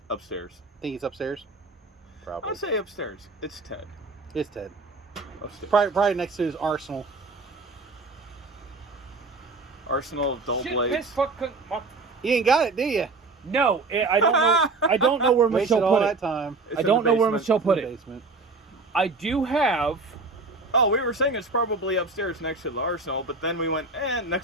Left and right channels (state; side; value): quieter; left; 3.6 dB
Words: Upstairs. Think he's upstairs. Probably. I'd say upstairs. It's Ted. It's Ted. Upstairs. Probably next to his arsenal. Arsenal of dull Shit, blades. piss, fuck, fuck. You ain't got it, do you? No, I don't know. I don't know where Wasted Michelle all put that it. time. It's I in don't the know where basement. Michelle put in the it. basement. I do have. Oh, we were saying it's probably upstairs next to the arsenal, but then we went,